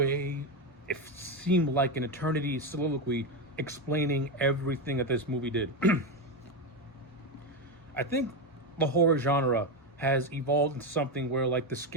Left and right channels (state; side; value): normal; both; correlation 0.12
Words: it seemed like an eternity soliloquy explaining everything that this movie did. I think the horror genre has evolved into something where if the